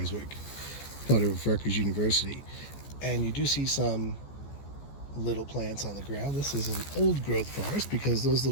part of Rutgers University. And you do see some little plants on the ground. This is an old growth forest because those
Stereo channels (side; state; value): right; late; 14 ms